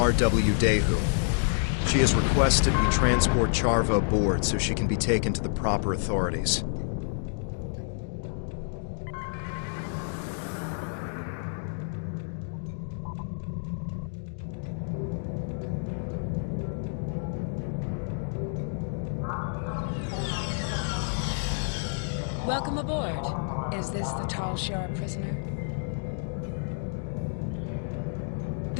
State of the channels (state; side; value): silent; right; digital silence